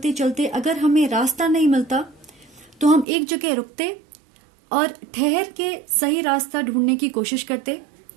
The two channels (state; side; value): drops out; left; at 3.1 s